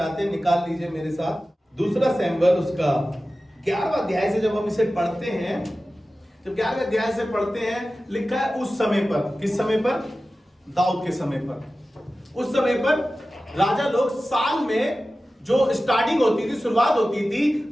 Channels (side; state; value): both; normal; correlation 0.95